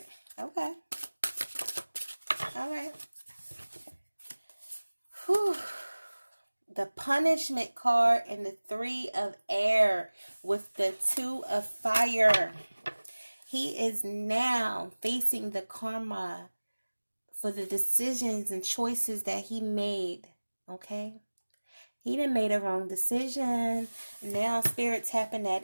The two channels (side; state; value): both; inverted; correlation -1.00